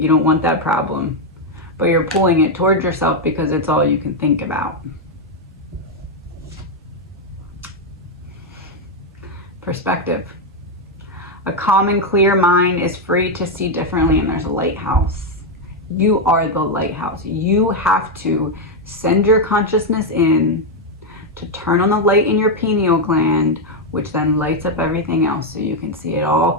You don't want that problem, but you're pulling it towards yourself because it's all you can think about. Perspective. A calm and clear mind is free to see differently, and there's a lighthouse. You are the lighthouse. You have to send your consciousness in to turn on the light in your pineal gland, which then lights up everything else so you can see it all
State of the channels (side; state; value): both; normal; correlation 0.03